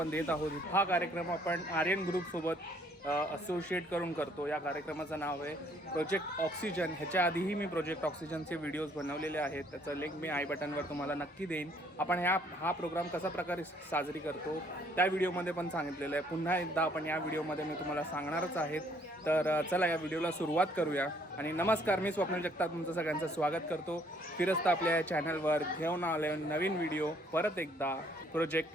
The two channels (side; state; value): both; normal; correlation 0.64